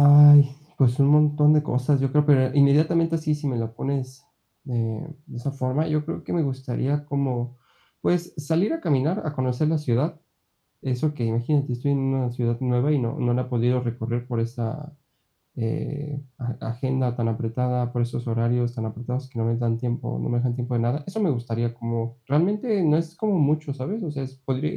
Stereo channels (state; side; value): identical; both; correlation 1.00